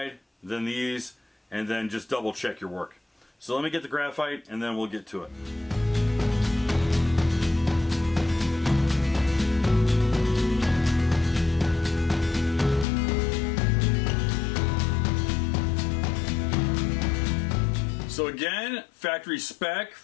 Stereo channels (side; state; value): right; drops out; at 12.9 s